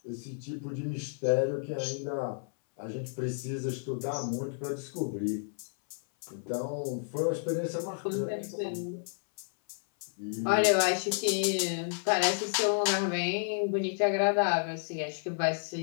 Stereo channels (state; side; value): silent; right; 57 dB below the other